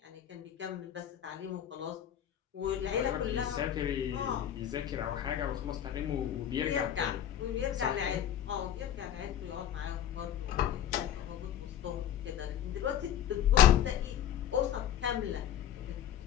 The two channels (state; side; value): quieter; right; 10.4 dB